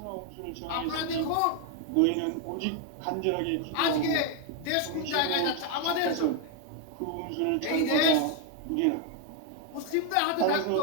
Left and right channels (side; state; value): both; different; correlation 0.01